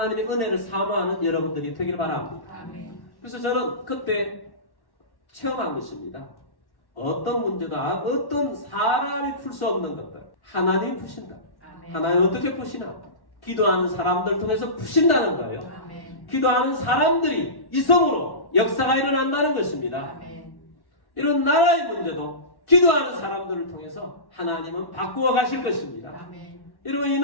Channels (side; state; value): right; late; 1.1 ms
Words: 은혜를 사모하는 여러분들이 되길 바랍니다. 그래서 저는 그때 체험한 것입니다. 어떤 문제도 어떤 사람이 풀 수 없는 것들 하나님이 푸신다. 하나님 어떻게 푸시나? 기도하는 사람들 통해서 푸신다는 거예요. 기도하는 사람들이 이성으로 역사가 일어난다는 것입니다. 이런 나라의 문제도 기도하는 사람들을 통해서 하나님은 바꾸어 가실 것입니다. 여러분 이